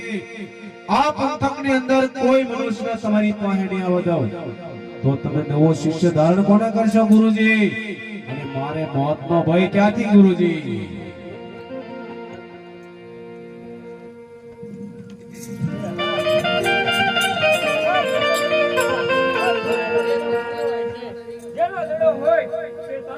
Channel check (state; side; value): identical; both; correlation 1.00